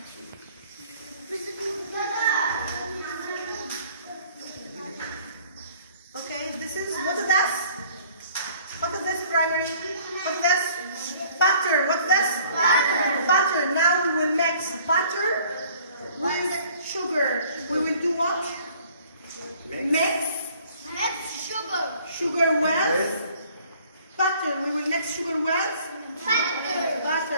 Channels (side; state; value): both; inverted; correlation -0.55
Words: Okay, this is, what is this? What is this primary? What is this? Butter. What's this? Butter. Butter. Now we will mix butter with sugar. We will do what? Mix. Mix sugar. Sugar with butter. We will mix sugar with Butter.